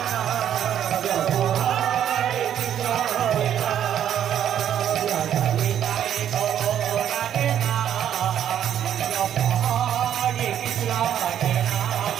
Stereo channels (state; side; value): quieter; left; 10.0 dB